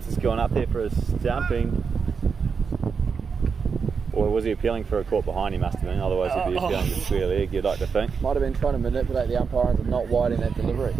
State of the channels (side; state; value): left; quieter; 5.7 dB